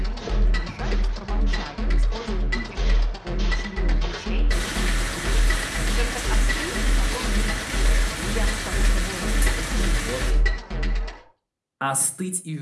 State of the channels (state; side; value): identical; both; correlation 1.00